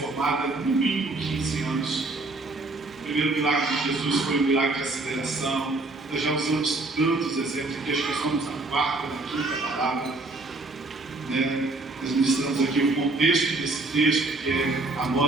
no mínimo 15 anos. O primeiro milagre de Jesus foi um milagre de aceleração. Nós já usamos tantos exemplos aqui, acho que nós estamos na quarta, na quinta palavra. Nós ministramos aqui o contexto desse texto, que é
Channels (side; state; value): left; quieter; 3.1 dB